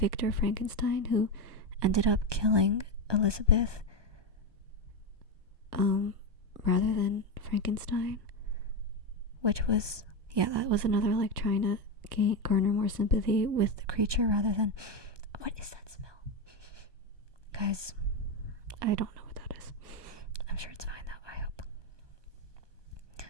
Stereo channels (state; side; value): late; left; 1.2 ms